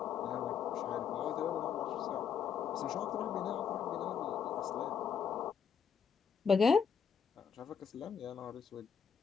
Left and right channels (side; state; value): right; quieter; 6.9 dB